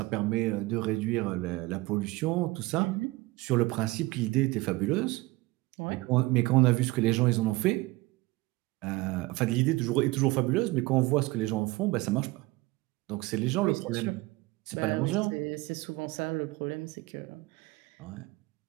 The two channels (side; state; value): left; quieter; 21.3 dB